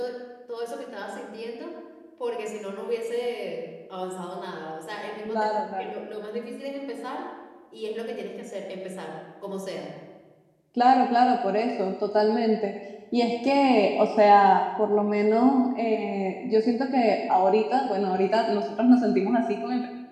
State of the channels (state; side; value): identical; both; correlation 1.00